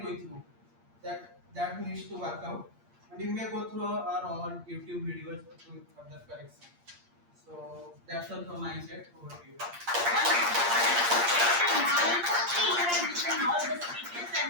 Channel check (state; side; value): late; left; 8.6 ms